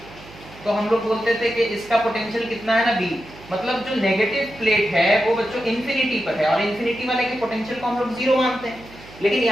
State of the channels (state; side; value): noise; right; hum, 20 dB below the sound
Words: तो हम लोग बोलते थे कि इसका पोटेंशियल कितना है ना V, मतलब जो नेगेटिव प्लेट है वो बच्चों इंफिनिटी पर है और इंफिनिटी वाले के पोटेंशियल को हम लोग जीरो मानते हैं, लेकिन